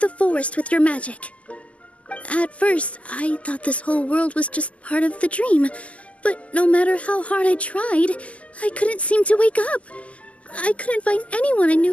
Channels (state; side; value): late; right; 0.066 ms